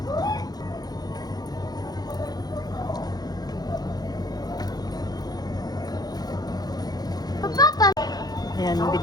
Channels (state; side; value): late; right; 0.19 ms